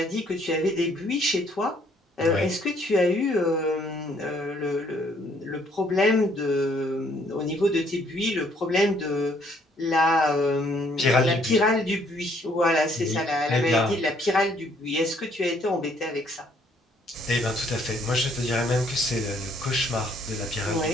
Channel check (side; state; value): both; normal; correlation 0.65